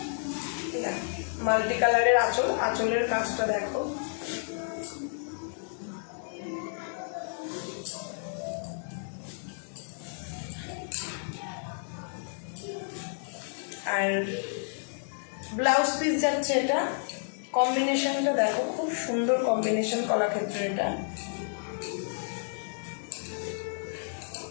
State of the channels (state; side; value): silent; right; digital silence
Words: মাল্টি কালারের আঁচল। আঁচলের কাজটা দেখো, আর ব্লাউজ পিস যাচ্ছে এটা। কম্বিনেশনটা দেখো, খুব সুন্দর কম্বিনেশন কলাক্ষেত্র। এটা